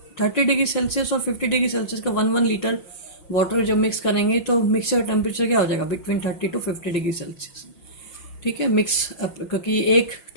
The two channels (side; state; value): right; late; 5.9 ms